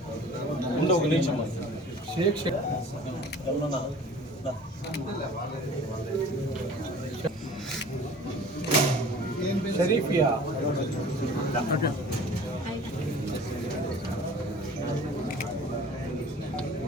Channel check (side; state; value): both; normal; correlation 0.46